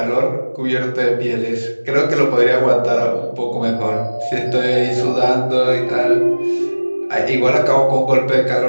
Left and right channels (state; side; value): inverted; both; correlation -1.00